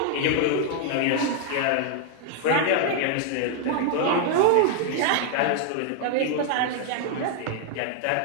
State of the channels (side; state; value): both; different; correlation 0.00